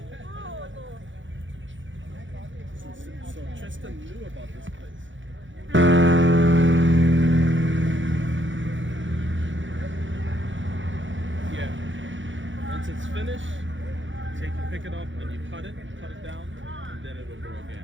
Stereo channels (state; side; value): late; left; 0.55 ms